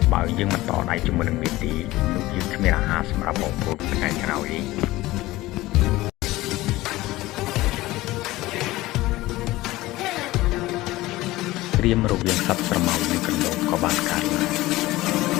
បើយើងមិនតដៃជាមួយនឹងវាទីនោះយើងគ្មានអាហារសម្រាប់បងប្អូនថ្ងៃក្រោយទេព្រាមរវាងសត្វស្រមោចនិងកណ្ដូបក៏បានកើតឡើង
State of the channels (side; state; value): right; quieter; 18.1 dB